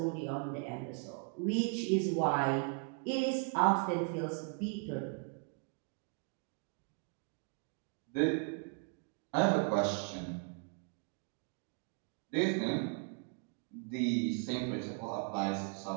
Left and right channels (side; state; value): left; quieter; 37.3 dB